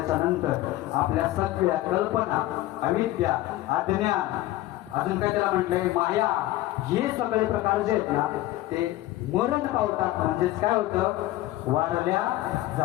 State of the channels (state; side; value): quieter; right; 16.0 dB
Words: नंतर आपल्या सगळ्या कल्पना, अविद्या, अज्ञान, अजून काय त्याला म्हटलंय माया, हे सगळे प्रकार जे आहेत ना ते मरण पावतात. म्हणजेच काय होतं, वारल्या